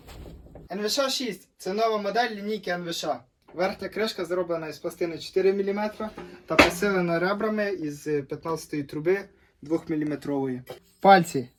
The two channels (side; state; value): both; identical; correlation 1.00